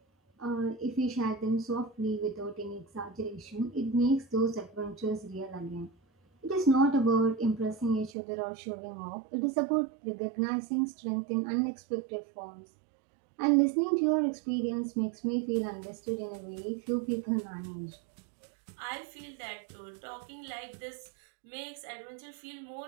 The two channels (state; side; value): drops out; left; at 8.1 s